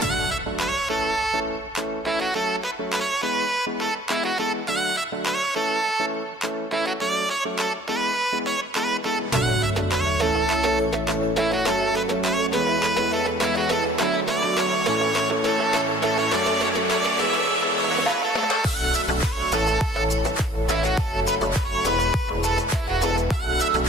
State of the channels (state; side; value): normal; both; correlation 0.57